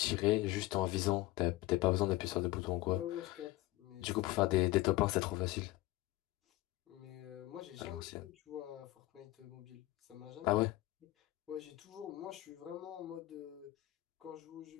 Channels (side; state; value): right; quieter; 18.2 dB